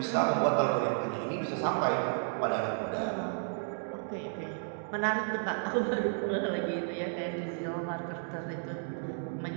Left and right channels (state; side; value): silent; left; digital silence